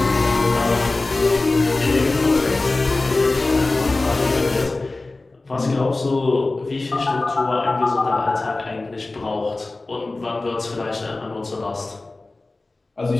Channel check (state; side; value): quieter; right; 3.2 dB